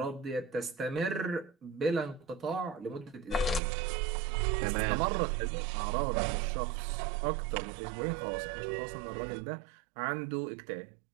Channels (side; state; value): left; drops out; at 3.6 s